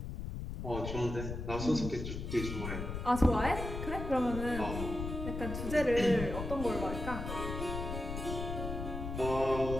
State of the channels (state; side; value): noise; left; rumble, 5 dB below the sound